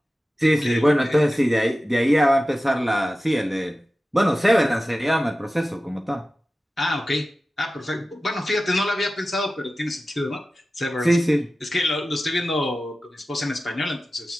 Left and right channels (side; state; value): both; normal; correlation 0.95